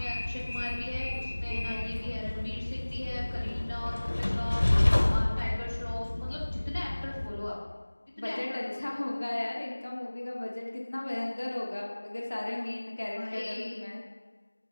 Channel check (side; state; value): both; inverted; correlation -1.00